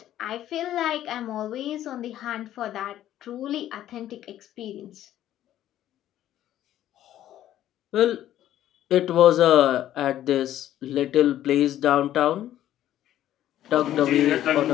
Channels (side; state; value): right; quieter; 12.4 dB